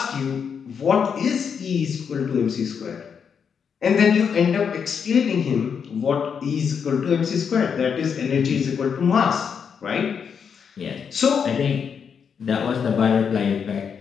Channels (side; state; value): right; quieter; 6.8 dB